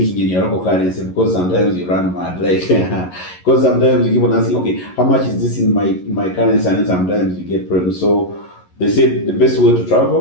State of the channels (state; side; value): late; right; 11 ms